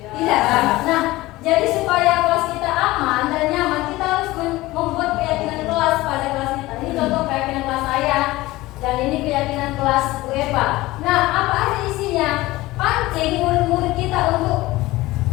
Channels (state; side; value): quieter; right; 18.7 dB